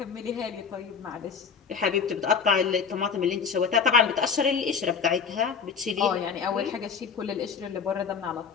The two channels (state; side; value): quieter; right; 6.1 dB